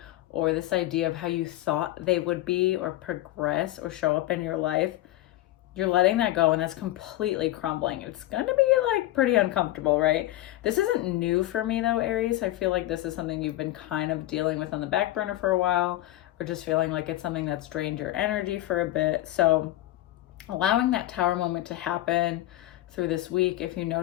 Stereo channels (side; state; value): right; quieter; 15.7 dB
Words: or this idea of how you thought they would be or progress or show up in your life, you're letting that go, and that's completely crumbling. It's gonna be like pretty uncomfortable, right? This isn't new for me though, Aries. I feel like this is something you've been kind of dealing with on the back burner for a while, or just feeling like it's something that's drained your energy for a bit. So allowing that tower moment to happen through this week, if you